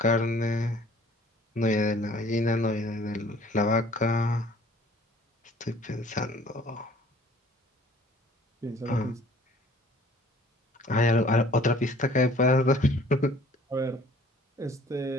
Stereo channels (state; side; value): normal; both; correlation 0.53